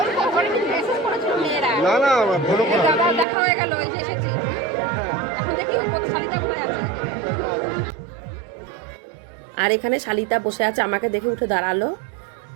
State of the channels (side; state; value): left; drops out; at 3.2 s